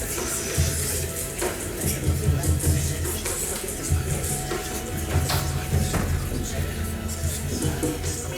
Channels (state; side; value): identical; both; correlation 1.00